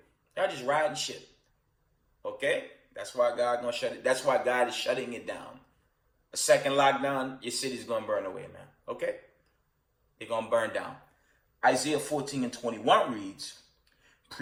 Y'all just riding shit. Okay, that's why God gonna shut it. That's why God is shutting it down. A second lockdown, your city's gonna burn away, man. Okay, they're gonna burn down. Isaiah 14 and 21 reads,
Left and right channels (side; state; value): both; identical; correlation 1.00